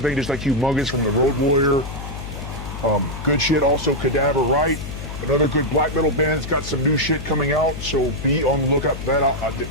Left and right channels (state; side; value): noise; left; hum, 9 dB below the sound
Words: just like Humongous from the Road Warrior. Good shit. Also, Cadaver Right, another good black metal band. It's got some new shit coming out, so be on the lookout for that.